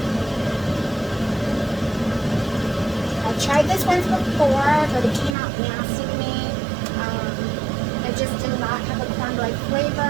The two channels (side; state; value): left; drops out; at 5.4 s